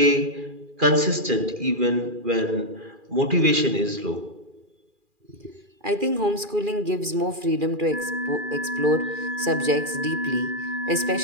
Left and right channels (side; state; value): left; late; 2.4 ms